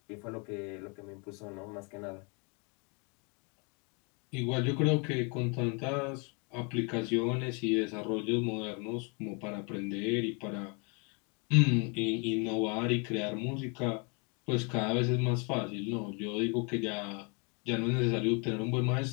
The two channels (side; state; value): right; quieter; 33.5 dB